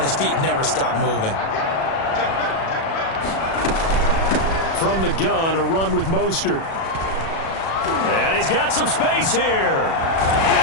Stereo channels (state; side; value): late; right; 37 ms